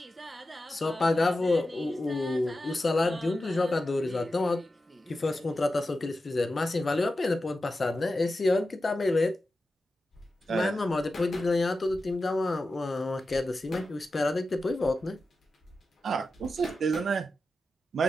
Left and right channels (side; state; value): both; normal; correlation 0.92